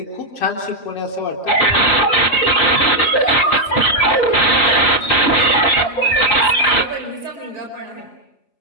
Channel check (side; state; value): right; late; 5.3 ms